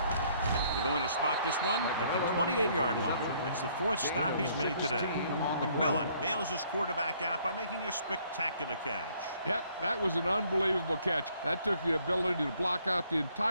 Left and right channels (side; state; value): both; inverted; correlation -0.64